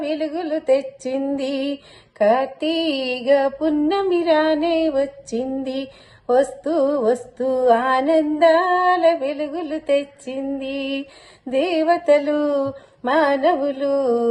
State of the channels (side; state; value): both; identical; correlation 1.00